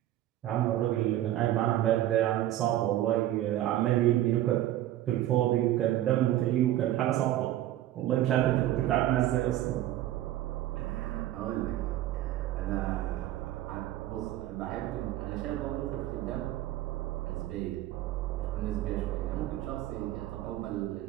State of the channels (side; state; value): left; quieter; 13.7 dB